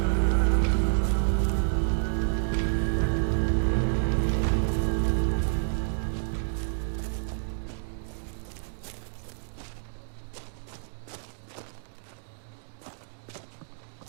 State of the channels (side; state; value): left; silent; digital silence